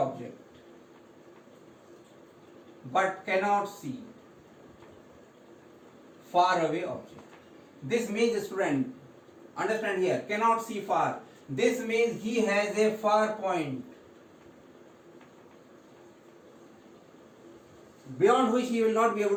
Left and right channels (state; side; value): identical; both; correlation 1.00